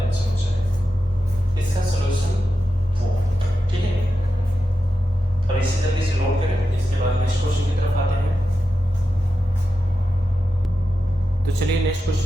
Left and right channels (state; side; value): normal; both; correlation 0.90